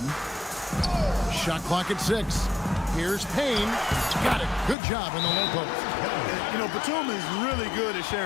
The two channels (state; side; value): drops out; right; at 4.8 s